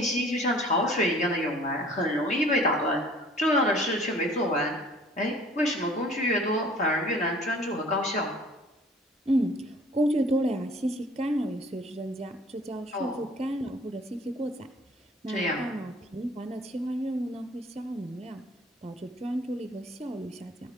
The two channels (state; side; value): normal; both; correlation 0.52